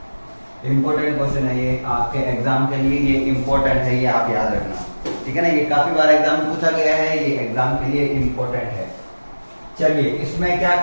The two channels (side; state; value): both; inverted; correlation -1.00